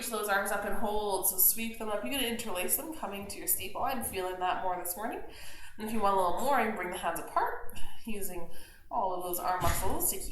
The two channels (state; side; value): identical; both; correlation 1.00